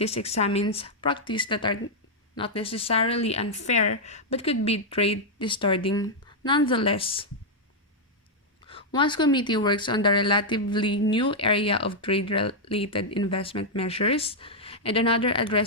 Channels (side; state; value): both; normal; correlation -0.04